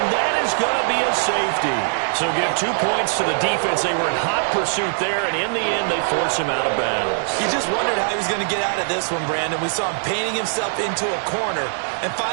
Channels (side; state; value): left; silent; digital silence